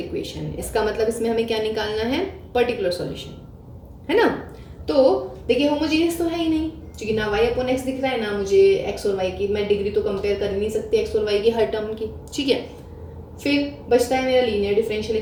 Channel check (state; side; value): identical; both; correlation 1.00